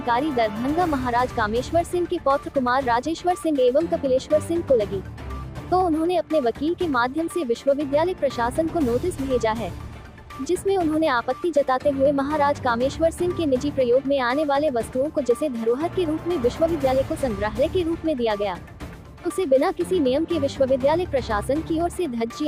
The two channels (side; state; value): both; identical; correlation 1.00